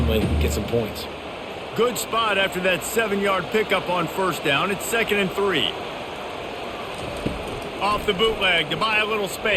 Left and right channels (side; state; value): both; identical; correlation 1.00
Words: get some points. Good spot after that 7-yard pickup on first down. It's 2nd and 3. Off the bootleg to buy a little